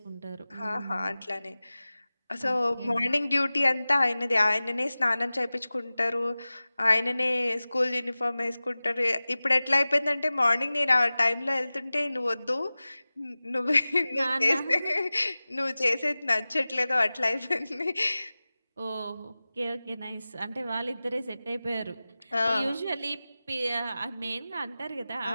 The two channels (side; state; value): both; inverted; correlation -0.97